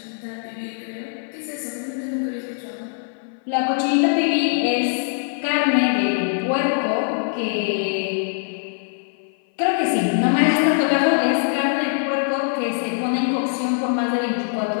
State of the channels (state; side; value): silent; right; 57 dB below the other